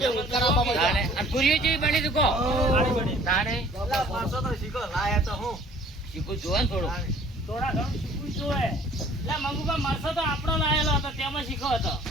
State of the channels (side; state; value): both; normal; correlation 0.53